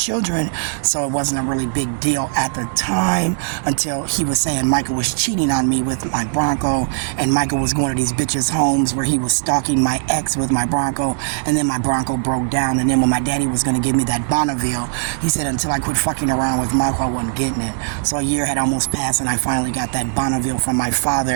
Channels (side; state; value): left; silent; digital silence